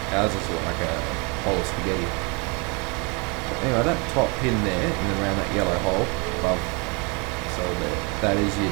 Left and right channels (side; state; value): left; quieter; 31.2 dB